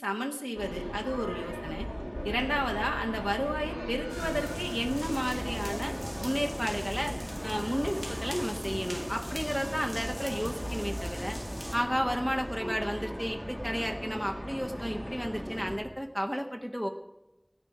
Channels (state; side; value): identical; both; correlation 1.00